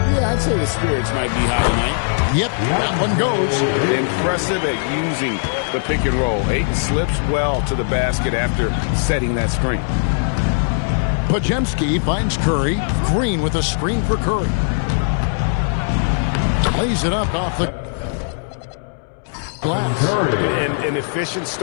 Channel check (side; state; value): right; silent; 66 dB below the other